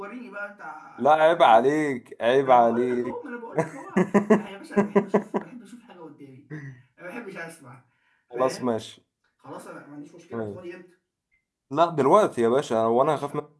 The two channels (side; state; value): both; identical; correlation 1.00